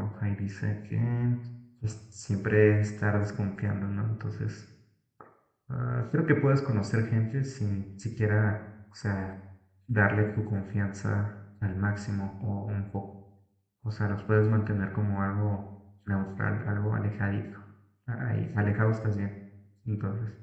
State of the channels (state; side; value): identical; both; correlation 1.00